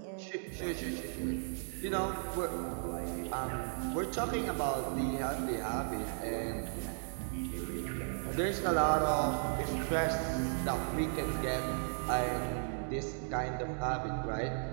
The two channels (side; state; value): left; silent; digital silence